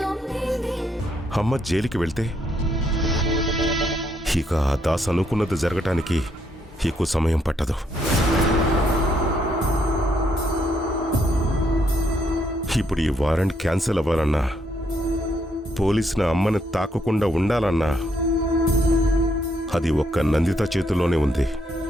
అమ్మ జైలుకి వెళ్తే ఇక ఆ దాస్ అనుకున్నది జరగటానికి ఎక్కువ సమయం పట్టదు. ఇప్పుడు ఈ వారెంట్ క్యాన్సిల్ అవ్వాలన్నా, పోలీసుల అమ్మని తాకకుండా ఉండాలన్నా అది ఒక్క నందిత చేతుల్లోనే ఉంది.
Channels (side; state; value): both; normal; correlation 0.74